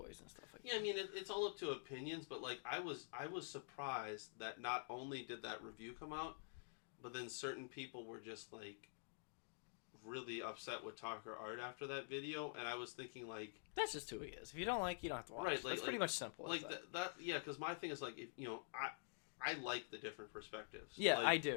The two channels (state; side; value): silent; right; digital silence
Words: and stuff like that. Yeah, I mean it's all up to opinions, but like I was surprised that not only did that review come out, but then certain people were just like really upset with talker art after that video, and I was thinking like that's just who he is. If you don't like, you don't have to watch. Right, that's pretty much simple. Like that. Yeah, because my thing is like if I like the different perspectives. Yeah, I